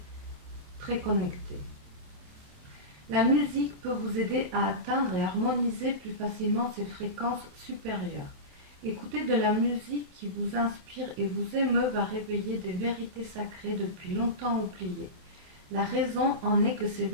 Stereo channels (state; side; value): late; left; 28 ms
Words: très connectées. La musique peut vous aider à atteindre et harmoniser plus facilement ces fréquences supérieures. Écouter de la musique qui vous inspire et vous émeut va réveiller des vérités sacrées depuis longtemps oubliées. La raison en est que ces